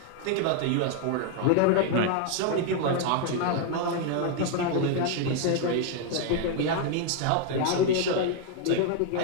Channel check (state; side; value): different; both; correlation 0.00